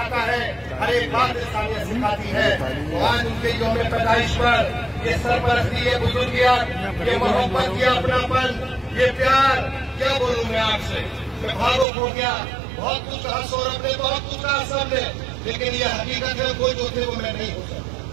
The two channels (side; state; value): left; drops out; at 11.9 s